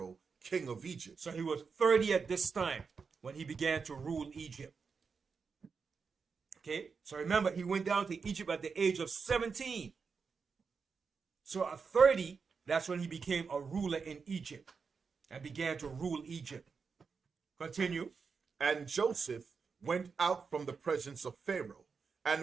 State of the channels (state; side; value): quieter; left; 5.4 dB